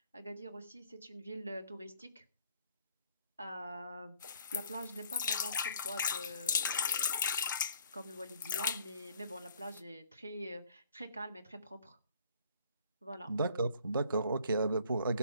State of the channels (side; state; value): both; inverted; correlation -0.60